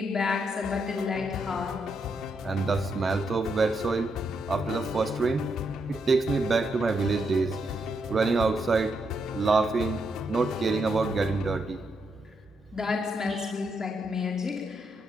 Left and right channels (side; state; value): both; normal; correlation 0.80